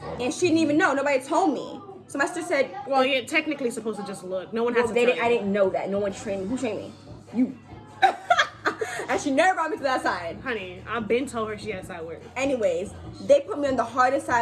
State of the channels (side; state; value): both; identical; correlation 1.00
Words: and she didn't even know. Nobody told me." So my sister said, Well, you're technically supposed to just look. No one has to they tell didn't, I you. didn't know that. No one trained me. Who trained me? You." And she never brought me to that side. Honey, I've been told her she had side work. Anyways, they put me on the hardest